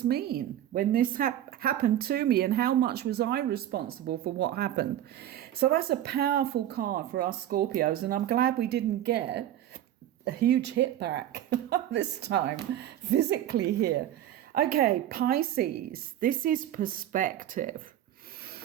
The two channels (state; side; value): quieter; left; 11.9 dB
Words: mean when this happened to me, and how much was I responsible for what happened? So that's a powerful card for us Scorpios, and I'm glad we didn't get a huge hit back this time physically here. Okay, Pisces, this is perspective,